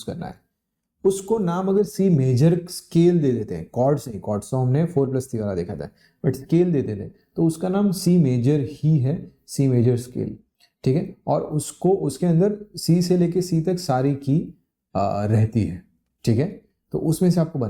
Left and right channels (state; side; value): identical; both; correlation 1.00